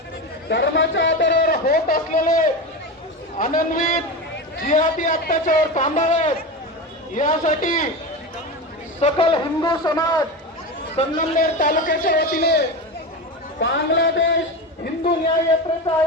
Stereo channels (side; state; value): both; normal; correlation 0.22